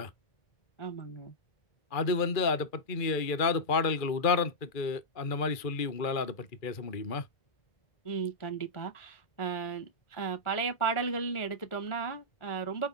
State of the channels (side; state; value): right; late; 2.3 ms